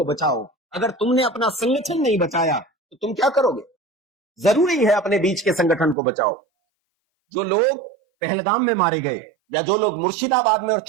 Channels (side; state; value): left; drops out; at 6.0 s